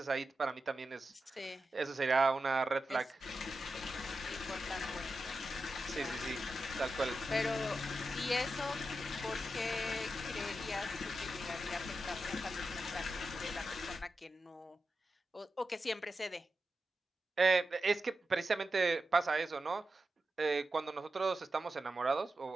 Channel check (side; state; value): both; normal; correlation 0.90